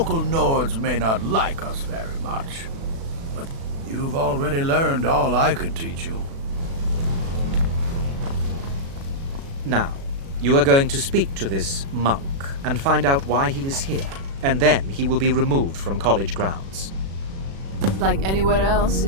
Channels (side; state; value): left; late; 36 ms